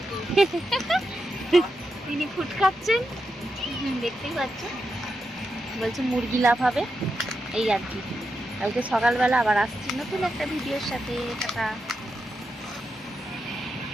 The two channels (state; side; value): normal; both; correlation 0.86